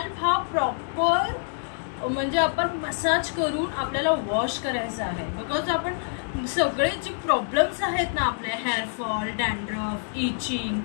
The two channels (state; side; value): silent; right; digital silence